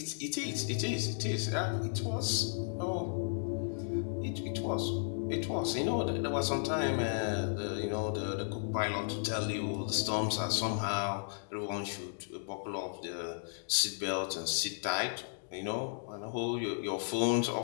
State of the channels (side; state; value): right; silent; digital silence